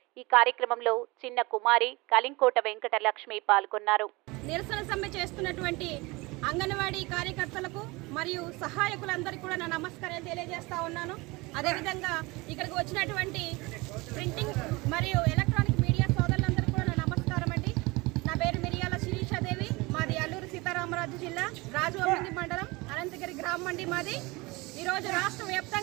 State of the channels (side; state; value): left; quieter; 23.7 dB